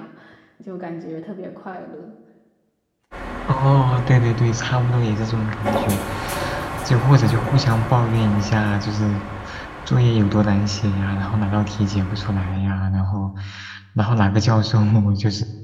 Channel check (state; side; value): identical; both; correlation 1.00